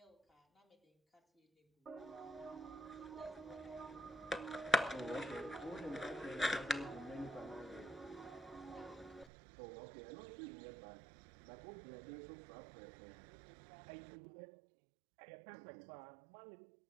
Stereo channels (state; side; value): drops out; left; at 9.3 s